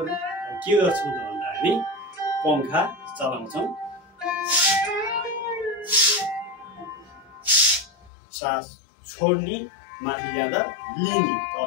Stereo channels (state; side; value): drops out; right; at 8.1 s